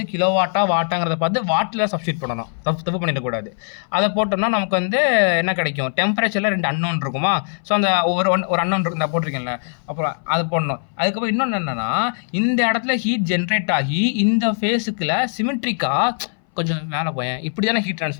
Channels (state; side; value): silent; right; 61 dB below the other